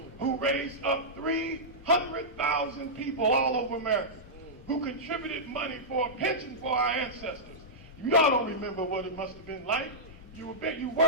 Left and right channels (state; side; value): normal; both; correlation -0.13